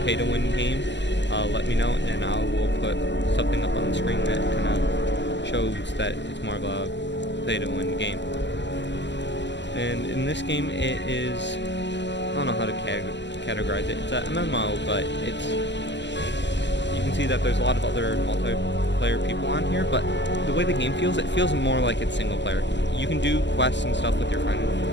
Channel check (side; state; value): right; late; 0.52 ms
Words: pay-to-win game, let me know and I will put something up on the screen that kind of shows that it's more of a pay-to-win game. And in this game, it is, I don't know how to categorize it. It's an MMO, but you can see that there's a lot of other multiplayer people on here, but the way the game feels, it feels more like it's single player. You can do quests and stuff with your friend,